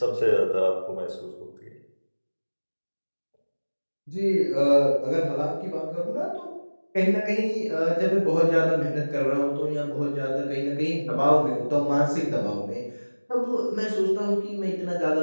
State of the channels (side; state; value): both; inverted; correlation -1.00